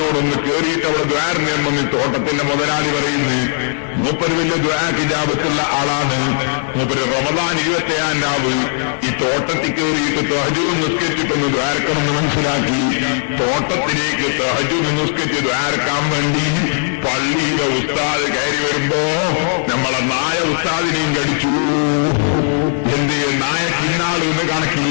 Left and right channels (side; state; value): right; silent; digital silence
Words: കേറിയിട്ട് അവിടെ ദ്വാരനെ വന്ന് തോട്ടത്തിന്റെ മുതലാളി പറയുന്നു, മൂപ്പര് വലിയ ദ്വാക്കിജാബത്തുള്ള ആളാണ്. മൂപ്പര് റമദാൻ 27-ാം രാവ് ഈ തോട്ടത്തിൽ കയറിയിട്ട് തഹജ്ജുദ് നിസ്കരിച്ചിട്ടൊന്ന് ദ്വാരക്കണമെന്ന് മനസ്സിലാക്കി തോട്ടത്തിലേക്ക് തഹജ്ജുദ് നിസ്കരിച്ച് ദ്വാരക്കാൻ വേണ്ടി പള്ളിയിലെ ഉസ്താദ് കയറി വരുമ്പോ നമ്മളെ നായ ഉസ്താദിനെയും കടിച്ചു. എന്ത് നായ കിന്നാള് എന്ന്